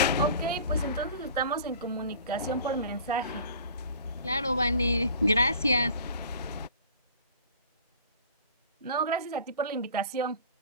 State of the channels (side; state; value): both; inverted; correlation -0.45